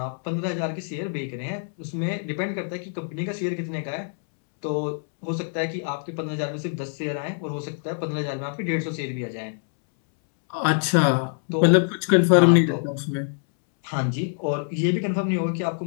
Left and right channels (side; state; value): right; silent; 62 dB below the other